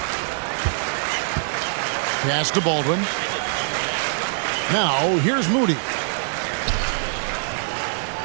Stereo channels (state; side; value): silent; left; 63 dB below the other